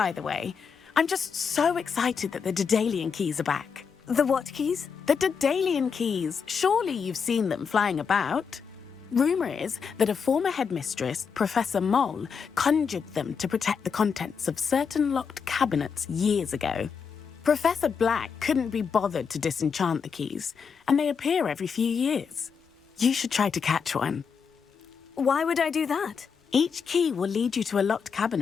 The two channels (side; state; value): right; quieter; 6.2 dB